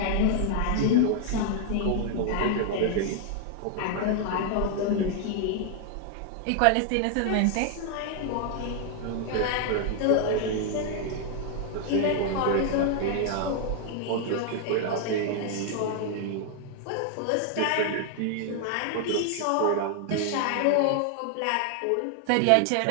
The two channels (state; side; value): different; both; correlation 0.00